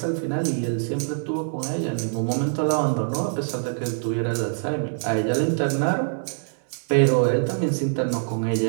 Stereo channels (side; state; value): left; silent; digital silence